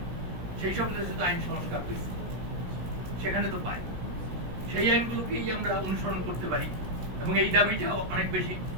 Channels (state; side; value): late; left; 17 ms